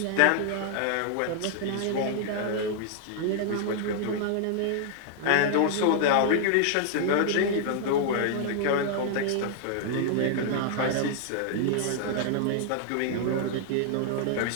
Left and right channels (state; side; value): different; both; correlation 0.00